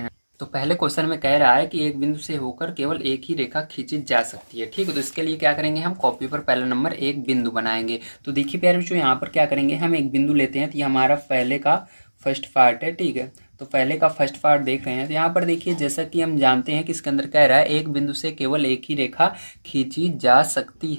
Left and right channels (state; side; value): inverted; both; correlation -1.00